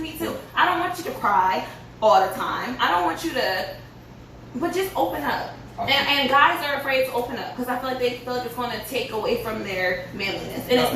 too. I don't want you to cry all the time. I don't want you to, but just open up. And guys are afraid to open up because I feel like they feel like it's going to take away from their manliness. And it's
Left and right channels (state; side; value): identical; both; correlation 1.00